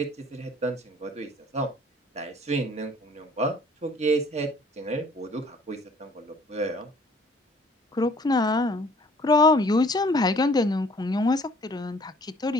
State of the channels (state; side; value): normal; both; correlation 0.56